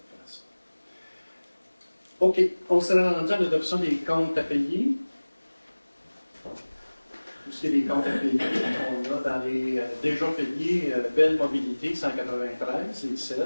ça. OK. On s'est rendu à l'adoption des comptes à payer. Tout ce qui est des comptes à payer, on a dans les déjà payés, Belle Mobilité 193, c'est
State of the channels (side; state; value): both; inverted; correlation -1.00